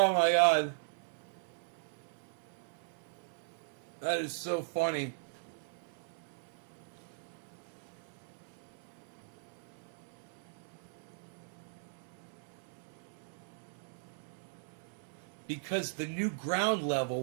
my God. That is so funny. Because the new ground level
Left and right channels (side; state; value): left; silent; 52 dB below the other